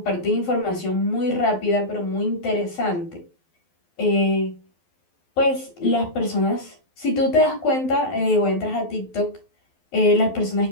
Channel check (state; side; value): late; right; 12 ms